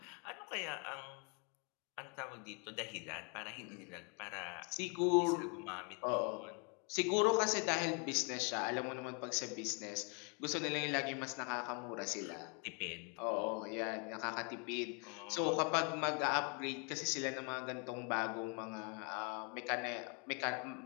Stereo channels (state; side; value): quieter; right; 34.9 dB